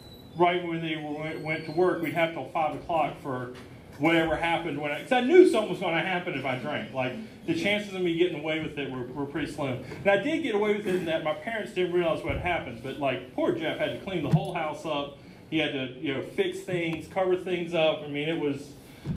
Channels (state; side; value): identical; both; correlation 1.00